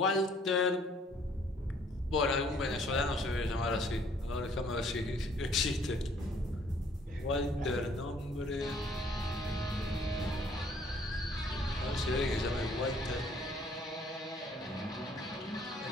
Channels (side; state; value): both; normal; correlation 0.61